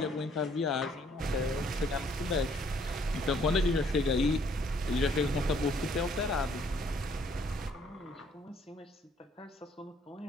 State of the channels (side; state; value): both; normal; correlation 0.64